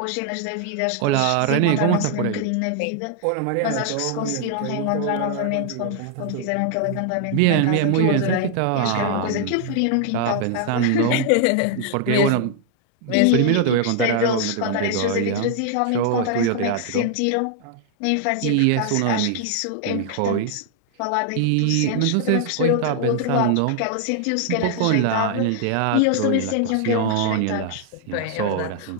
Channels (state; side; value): different; both; correlation 0.00